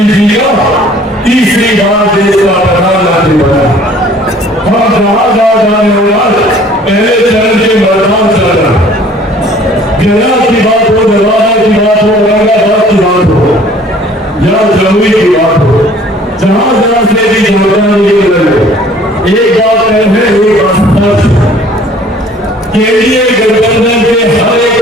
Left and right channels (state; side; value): normal; both; correlation 0.53